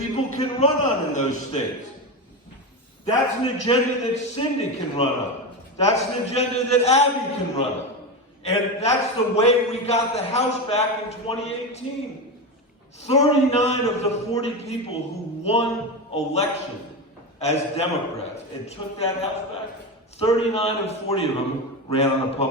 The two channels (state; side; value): normal; both; correlation 0.18